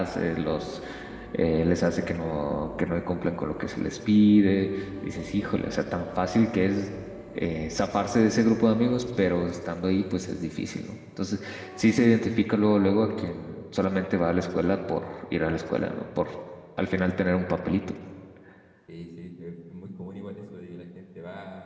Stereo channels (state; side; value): identical; both; correlation 1.00